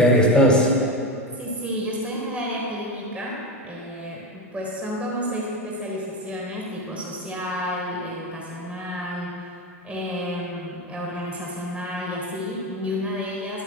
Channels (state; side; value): normal; both; correlation 0.18